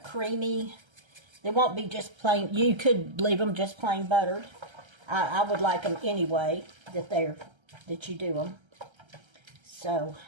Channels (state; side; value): late; left; 1.3 ms